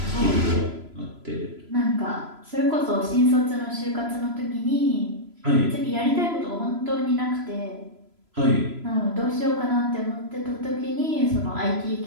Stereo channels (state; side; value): late; left; 3.0 ms